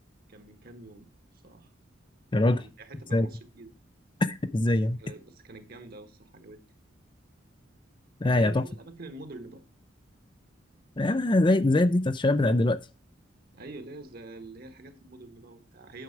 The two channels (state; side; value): normal; both; correlation 0.79